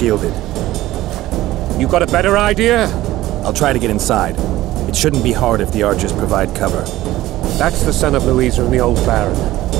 You got a better idea? I'll try to get inside. It shouldn't be hard if the archers provide cover. That's the son of Louisa and the old Baron,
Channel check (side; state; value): left; quieter; 16.0 dB